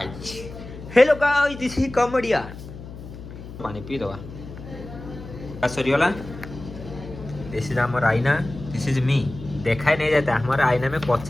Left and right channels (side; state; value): left; noise; hum, 13 dB below the sound